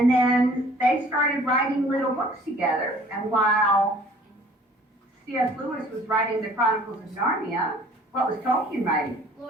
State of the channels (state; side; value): normal; both; correlation 0.53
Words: then they started writing little books together. And while C.S. Lewis was writing the Chronicles of Narnia, what was Tolkien writing?